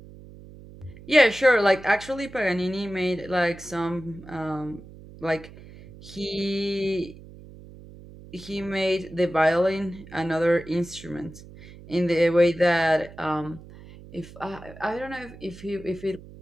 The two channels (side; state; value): right; noise; hum, 18 dB below the sound